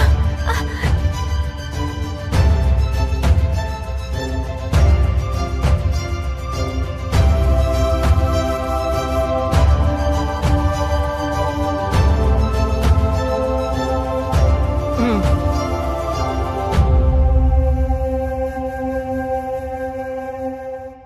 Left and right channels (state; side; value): identical; both; correlation 1.00